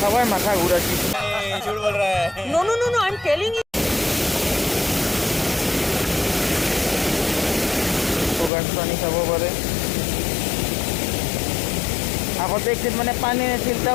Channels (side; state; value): right; drops out; at 8.5 s